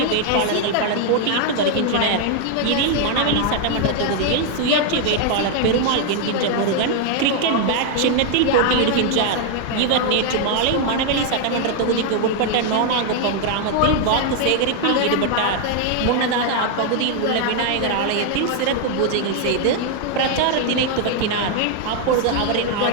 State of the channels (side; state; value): both; different; correlation 0.00